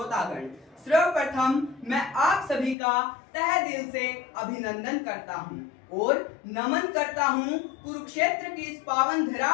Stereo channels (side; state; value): right; drops out; at 2.8 s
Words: सर्वप्रथम मैं आप सभी का तहे दिल से अभिनंदन करता हूं और नमन करता हूं कुरुक्षेत्र की इस पावन धरा